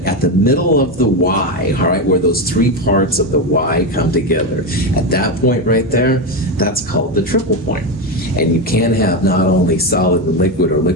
at the middle of the Y, all right, where those 3 parts of the Y come together, at that point right there, that's called the triple point. And you can have not only solid and liquid or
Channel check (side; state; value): both; normal; correlation 0.12